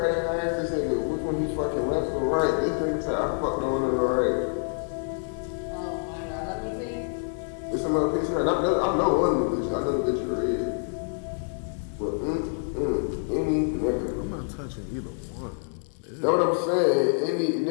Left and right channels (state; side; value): silent; right; digital silence